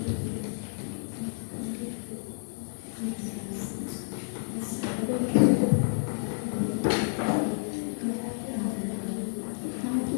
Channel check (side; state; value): right; silent; digital silence